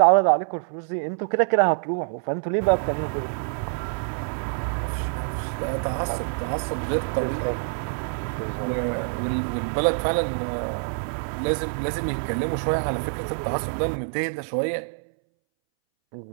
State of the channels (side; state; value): left; silent; 61 dB below the other